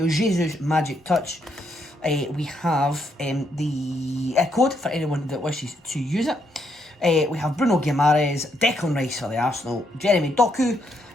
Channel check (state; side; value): normal; both; correlation 0.75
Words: Jesus Magic Touch. We have the code for anyone that wishes to use it. We have Bruno Guimaraes, Declan Rice for the Arsenal, Jeremy Doku,